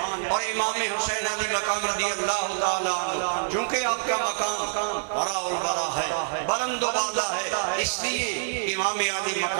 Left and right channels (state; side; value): silent; left; 59 dB below the other